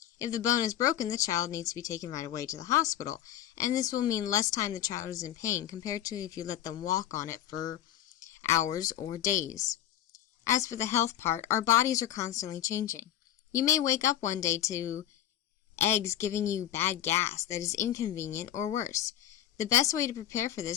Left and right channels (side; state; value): right; quieter; 11.7 dB